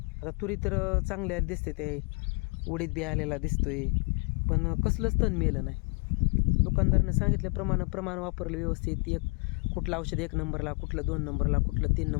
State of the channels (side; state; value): right; quieter; 33.7 dB